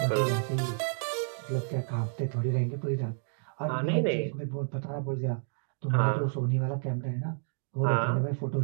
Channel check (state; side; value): silent; left; digital silence